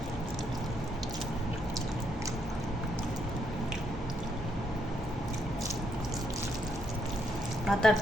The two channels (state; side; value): normal; both; correlation 0.76